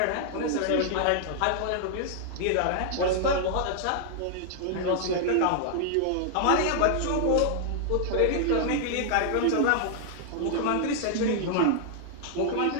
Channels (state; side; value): different; both; correlation -0.01